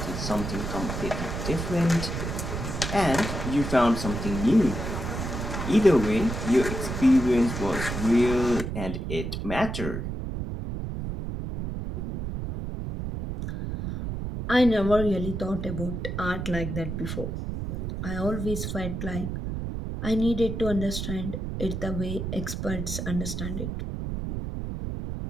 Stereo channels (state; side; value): noise; right; rumble, 4 dB below the sound